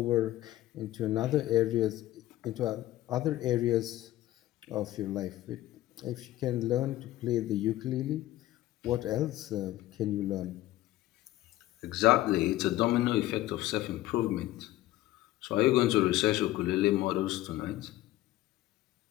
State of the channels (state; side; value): quieter; right; 15.6 dB